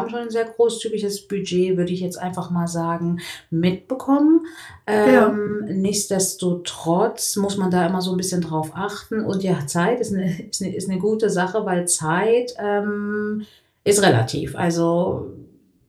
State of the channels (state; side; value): identical; both; correlation 1.00